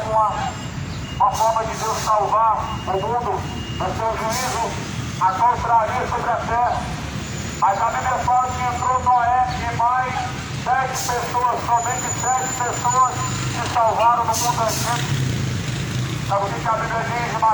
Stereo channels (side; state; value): both; identical; correlation 1.00